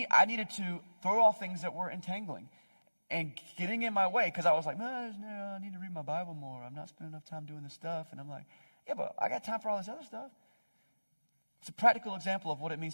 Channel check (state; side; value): inverted; both; correlation -1.00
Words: I needed to throw off things that were entangling and getting in my way because I was like, man, I need to read my Bible more. I'm not spending enough time doing this stuff. And I'm like, yeah, but I got time for all this other stuff. It's a practical example of what it